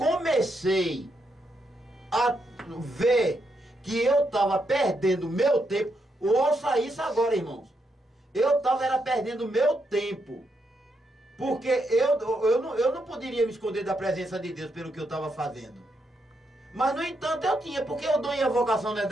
a ver que eu estava perdendo meu tempo, ouça isso agora, irmãos. Eu estava perdendo meu tempo. Porque eu não poderia me esconder da presença de Deus pelo que eu estava fazendo. Mas, no entanto, eu tinha, porque o dom e a vocação não é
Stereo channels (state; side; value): normal; both; correlation 0.80